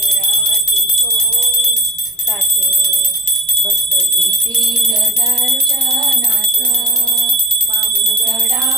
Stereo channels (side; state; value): both; normal; correlation 0.37